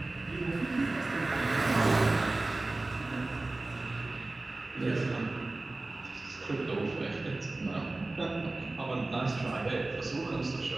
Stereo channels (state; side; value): quieter; left; 3.0 dB